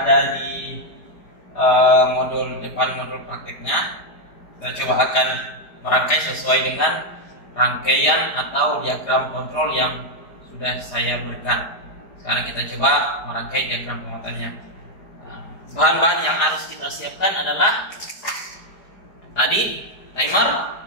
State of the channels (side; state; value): right; late; 4.8 ms